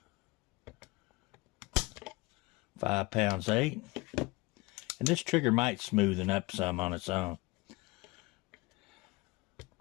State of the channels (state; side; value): quieter; right; 22.9 dB